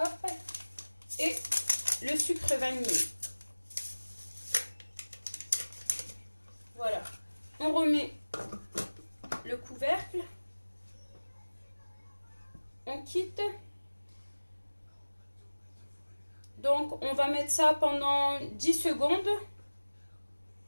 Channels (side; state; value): both; inverted; correlation -1.00